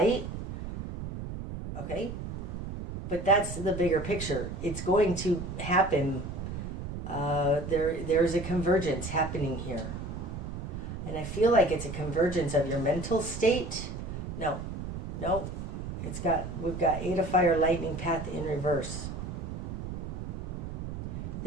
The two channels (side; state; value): right; noise; rumble, 6 dB below the sound